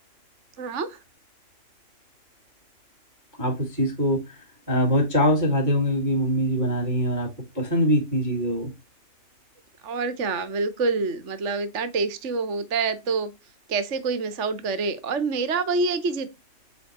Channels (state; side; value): late; left; 3.4 ms